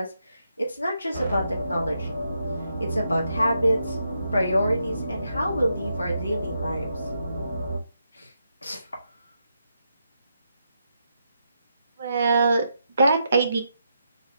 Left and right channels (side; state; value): both; inverted; correlation -0.82